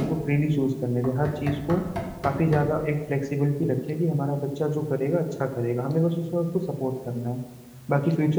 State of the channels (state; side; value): identical; both; correlation 1.00